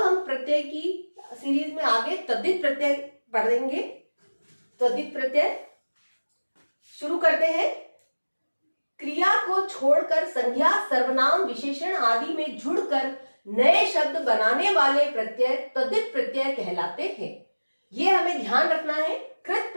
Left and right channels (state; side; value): inverted; both; correlation -1.00